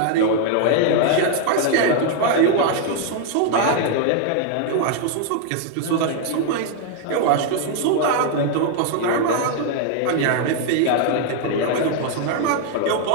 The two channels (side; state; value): both; different; correlation 0.00